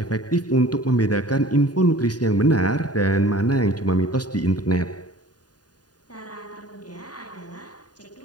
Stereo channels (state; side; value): late; right; 0.69 ms